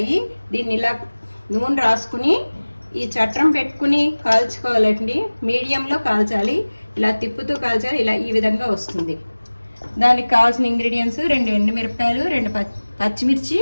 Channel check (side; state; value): both; inverted; correlation -1.00